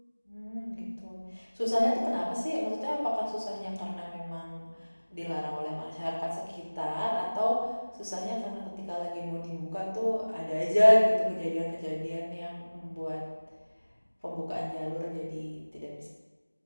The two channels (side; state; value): both; inverted; correlation -1.00